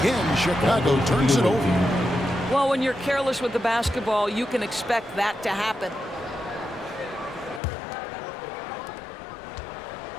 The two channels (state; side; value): drops out; right; at 7.6 s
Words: Chicago turns it over. Well, when you're careless with the basketball, you can expect that to happen.